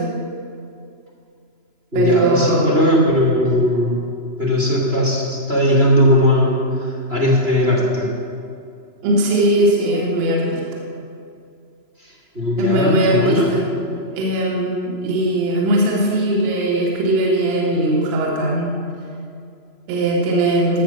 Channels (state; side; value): late; left; 3.0 ms